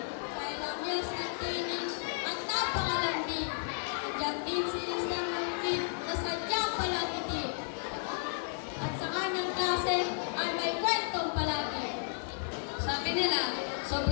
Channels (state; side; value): silent; right; 56 dB below the other